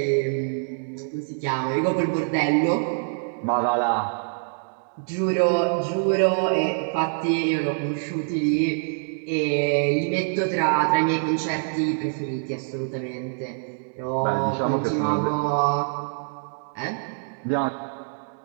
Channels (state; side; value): silent; left; digital silence